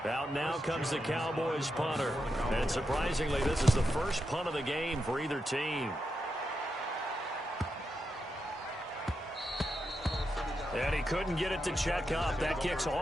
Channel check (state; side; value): normal; both; correlation 0.86